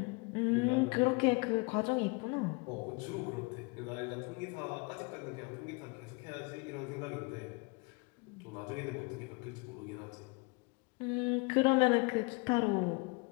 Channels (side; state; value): right; quieter; 29.1 dB